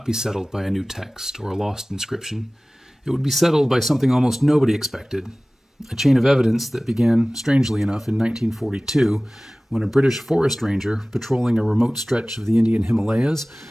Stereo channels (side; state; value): both; normal; correlation 0.98